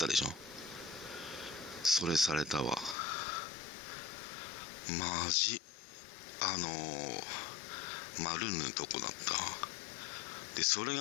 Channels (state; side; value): drops out; right; at 3.0 s